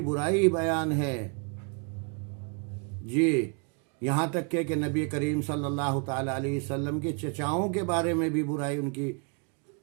برائی بیان ہے۔ جی، یہاں تک کہ نبی کریم صلی اللہ تعالیٰ علیہ وسلم کے چچاؤں کے بارے میں بھی برائی ان کی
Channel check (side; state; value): left; quieter; 37.0 dB